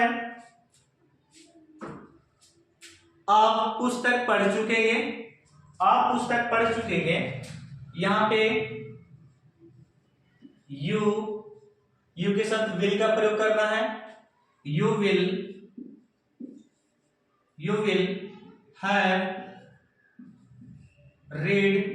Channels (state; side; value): identical; both; correlation 1.00